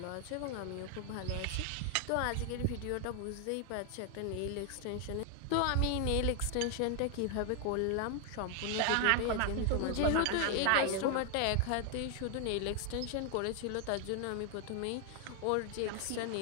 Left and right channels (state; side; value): different; both; correlation 0.00